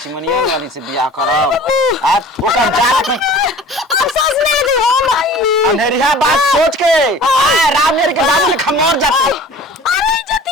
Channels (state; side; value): normal; both; correlation 0.43